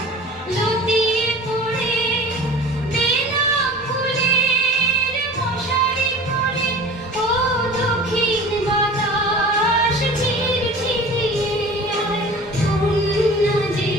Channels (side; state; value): both; normal; correlation 0.40